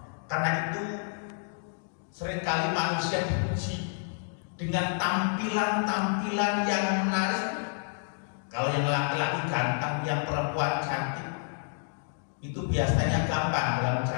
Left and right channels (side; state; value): right; silent; 58 dB below the other